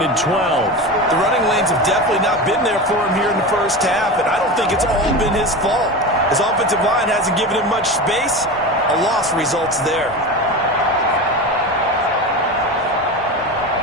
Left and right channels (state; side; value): normal; both; correlation 0.26